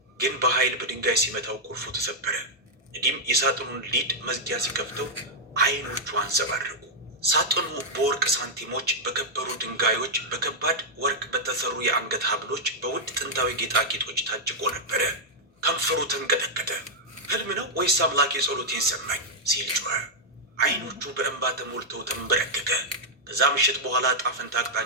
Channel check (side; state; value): both; normal; correlation -0.05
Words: ግን በኃይል በድንጋይ ሲመታው ቁልፉ ተሰበረ። ነዲም የሳጥኑን ሊድ መዝጊያ ሲከፍተው አይኖቹ አንጸባረቁ። ሳጥኑ በወርቅ ሳንቲሞች፣ በከበሩ ድንጋዮች፣ በከባድ ወርቅ በተሰሩ የአንገት ሀብሎች፣ በውድ ጥንታዊ ጌጣጌጦች ታጭቆ ነበረ። ከንፈሩ ተንቀጠቀጠ። ህልም ነው ወይስ አምላክ የጸሎቴን ሰማኝ ሲል ጮኸ። አይኖቹ በእንባ ተሞልተው ተንበረከከ። ከዛ ምሽት በኋላ ጣፈንታ